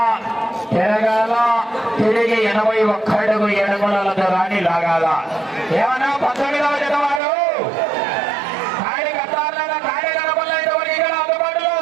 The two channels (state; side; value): drops out; left; at 7.2 s